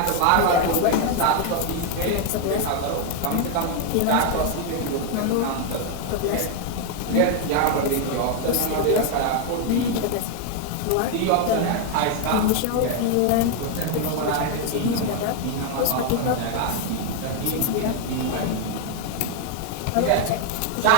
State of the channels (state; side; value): different; both; correlation 0.00